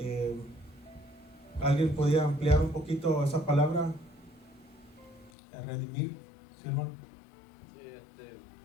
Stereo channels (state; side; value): drops out; right; at 5.3 s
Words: ¿Alguien podía ampliar un poquito esa palabra? Redimir, ¿sí, hermano? Sí,